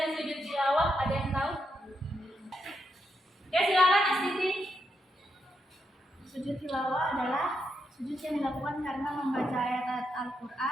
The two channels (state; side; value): normal; both; correlation 0.82